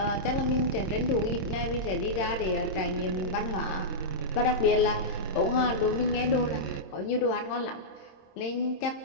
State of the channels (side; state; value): right; late; 26 ms